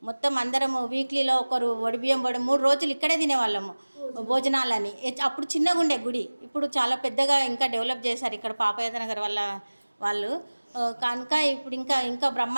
మొత్తం అందరము వీక్లీలో ఒకరు ఒడిబియ్యం 3 రోజులు ఇక్కడే తినేవాళ్ళము భోజనాలని. అప్పుడు చిన్నగా ఉండే గుడి, ఇప్పుడు చాలా పెద్దగా ఇంకా డెవలప్ చేశారు ఇక్కడ పాపయాద నగర్ వాళ్ళు కనుక ఇప్పుడు ఇంకా ఇంకా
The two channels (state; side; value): inverted; both; correlation -1.00